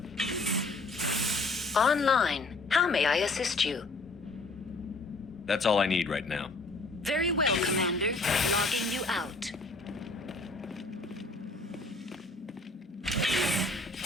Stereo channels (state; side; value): quieter; right; 3.1 dB